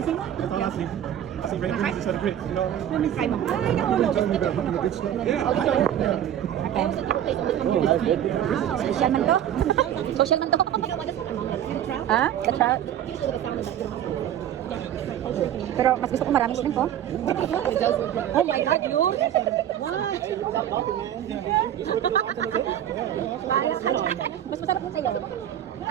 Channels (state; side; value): quieter; left; 10.8 dB